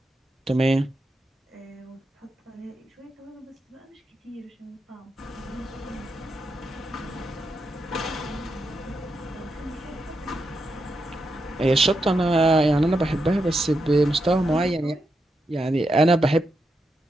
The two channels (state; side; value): normal; both; correlation 0.85